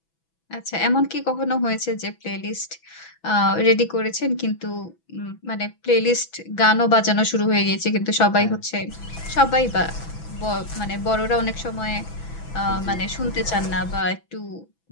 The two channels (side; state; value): right; late; 6.0 ms